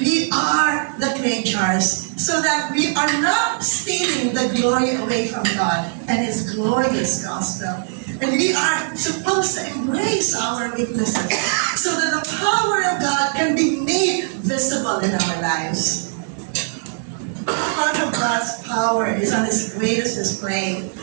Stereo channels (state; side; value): silent; left; digital silence